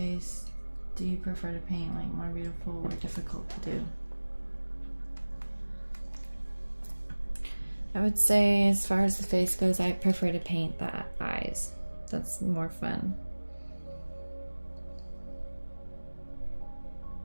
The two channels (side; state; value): both; inverted; correlation -1.00